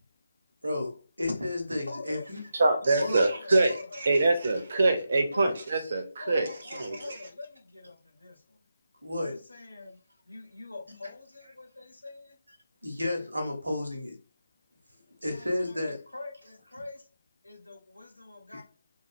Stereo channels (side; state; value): both; inverted; correlation -0.88